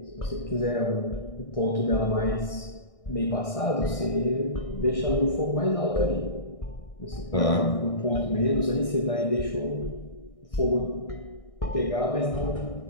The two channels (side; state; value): right; late; 1.6 ms